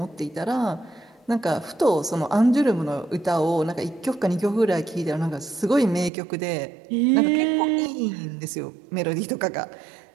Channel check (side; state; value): left; drops out; at 6.1 s